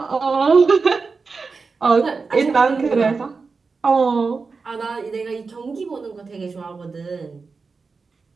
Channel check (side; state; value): left; quieter; 4.6 dB